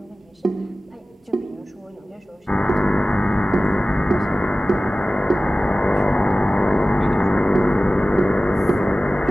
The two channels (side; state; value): both; normal; correlation 0.96